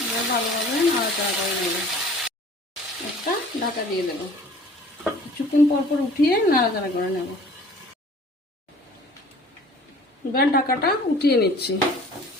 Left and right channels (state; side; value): normal; both; correlation 0.48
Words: এবার ভালোভাবে নাড়াচাড়া করে নেব। একটা ঢাকা দিয়ে দেবো। কিছুক্ষণ পর উঠিয়ে নাড়াচাড়া করে নেব। এবার ঢাকাটা উঠিয়ে নিচ্ছি।